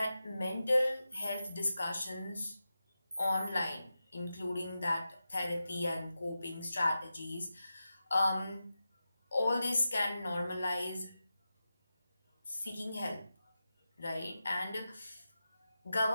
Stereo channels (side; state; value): both; inverted; correlation -0.91